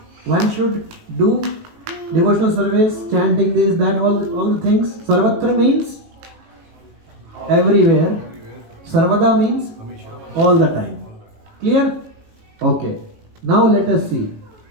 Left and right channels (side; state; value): left; late; 18 ms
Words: One should do devotional service, chanting this, that, all the things. Sarvatra means everywhere. Sarvada means all the time. Clear? Okay. Now let us see.